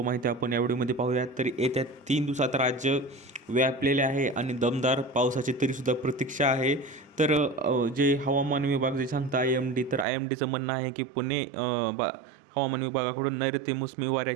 माहिती आपण या व्हिडिओमध्ये पाहूयात. तर येत्या 3 दिवसात राज्य व्यापलेले आहे आणि दमदार पावसाची तरीसुद्धा प्रतीक्षा आहे. तर जे हवामान विभाग जे सांगता IMD, तर IMDचं म्हणणं आहे की पुणे हवामान विभागाकडून नैऋत्य मोसमी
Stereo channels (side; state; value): left; drops out; at 10.1 s